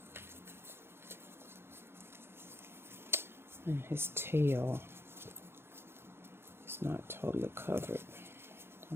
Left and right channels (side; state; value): left; late; 0.11 ms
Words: And his tail is not totally covered.